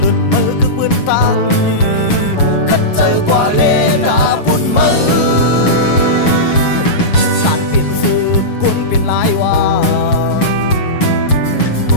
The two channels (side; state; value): right; late; 7.2 ms